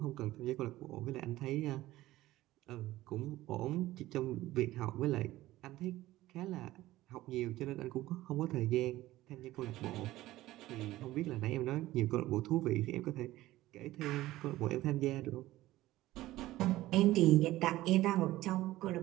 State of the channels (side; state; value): left; quieter; 16.3 dB